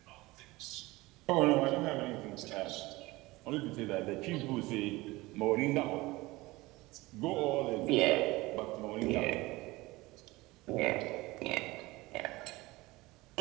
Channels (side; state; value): left; quieter; 20.8 dB